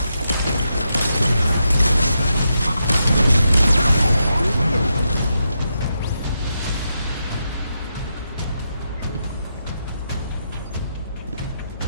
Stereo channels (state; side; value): inverted; both; correlation -0.84